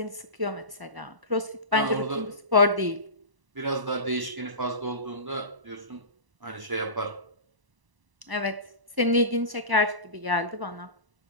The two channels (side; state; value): left; late; 1.0 ms